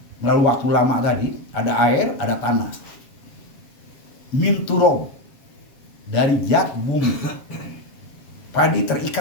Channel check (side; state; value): right; late; 7.0 ms